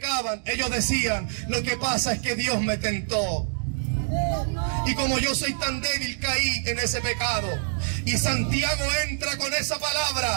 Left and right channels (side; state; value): left; silent; digital silence